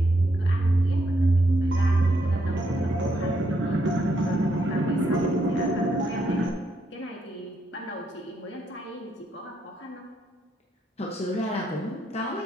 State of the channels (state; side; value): normal; both; correlation 0.76